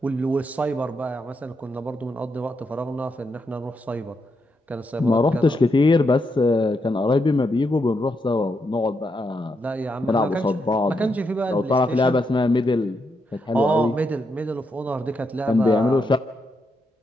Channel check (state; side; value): normal; both; correlation 0.81